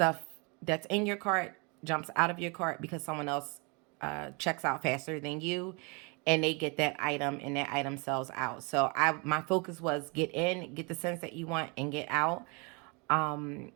that's in your cart jumps out of your cart because someone else checks out faster than you, and they get that item and that item sells out. So my focus was get in, get the scents that you want, and get out.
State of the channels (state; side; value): quieter; left; 31.5 dB